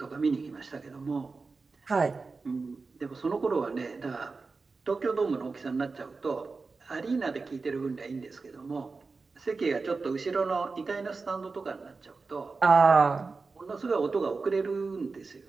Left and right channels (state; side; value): quieter; left; 4.2 dB